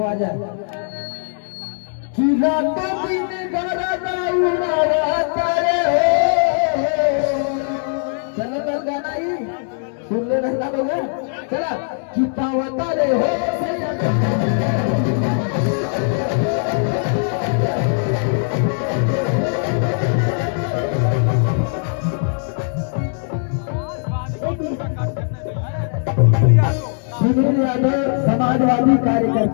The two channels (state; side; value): silent; right; 66 dB below the other